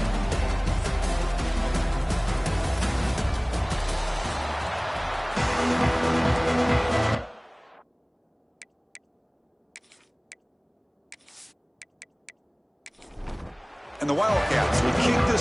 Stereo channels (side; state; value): both; identical; correlation 1.00